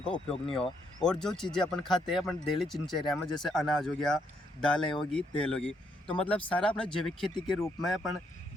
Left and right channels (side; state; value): both; normal; correlation 0.74